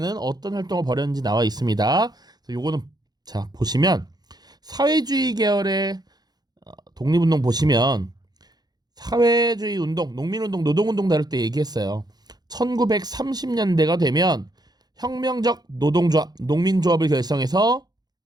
어떤 활동을 벌였는지 나와 있습니다. 요거는 자 보시면 사회주의 계열의 독립운동 보시면 사회주의 운동, 농민운동, 노동운동 다룰 때 얘기했어요. 1930년대가 되면 혁명적 노동조합, 농민조합을 결성해서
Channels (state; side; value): late; left; 0.19 ms